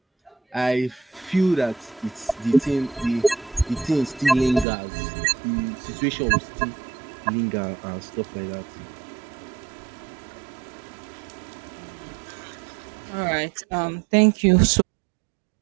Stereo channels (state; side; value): drops out; left; at 4.7 s